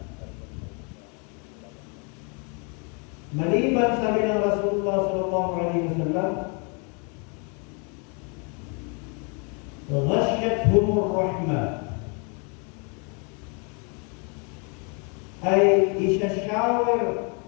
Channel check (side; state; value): right; quieter; 35.5 dB